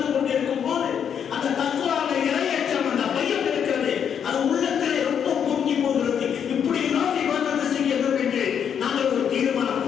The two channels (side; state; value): right; quieter; 8.1 dB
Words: கொண்டிருக்கும் போது அந்த தக்வாவை இறையச்சம், அந்த பயம் இருக்கிறது, அது உள்ளத்திலே ரொம்ப பொங்கி போகிறது. இப்படி எல்லாம் இபாதத் செய்ய வேண்டும் என்று நாங்கள் ஒரு